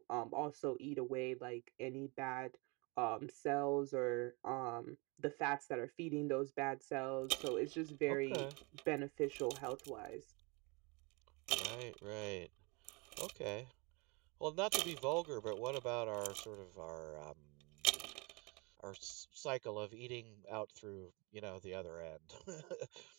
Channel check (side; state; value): left; quieter; 29.0 dB